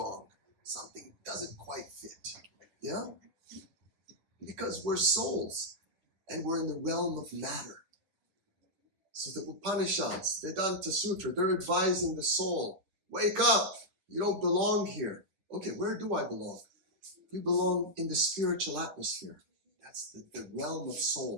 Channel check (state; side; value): late; left; 10 ms